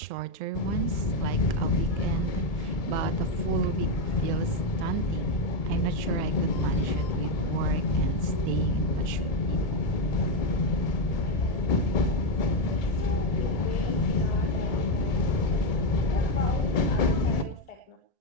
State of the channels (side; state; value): right; late; 1.8 ms